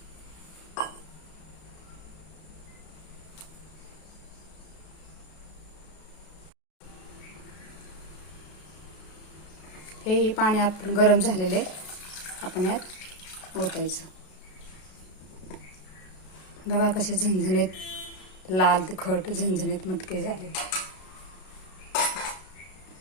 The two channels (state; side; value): late; right; 32 ms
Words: हे पाणी आपण गरम झालेले आपण यात ओतायचं. बघा कसे झणझणीत लाल तिखट झणझणीत मटके झाले.